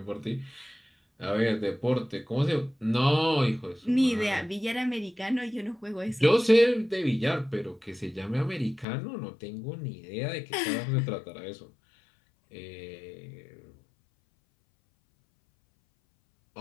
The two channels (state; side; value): drops out; right; at 8.8 s